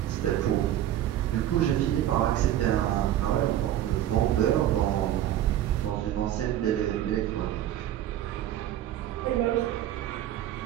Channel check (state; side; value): quieter; left; 12.1 dB